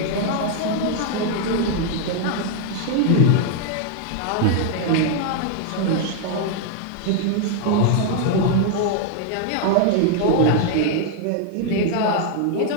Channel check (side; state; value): both; different; correlation 0.00